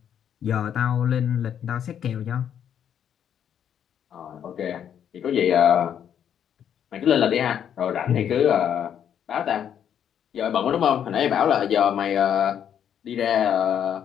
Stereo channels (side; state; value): right; quieter; 9.1 dB